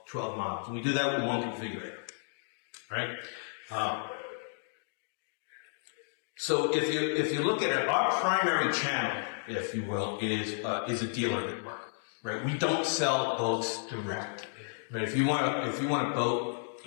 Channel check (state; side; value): silent; right; digital silence